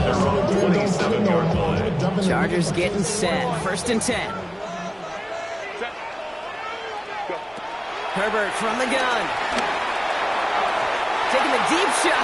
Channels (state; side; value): identical; both; correlation 1.00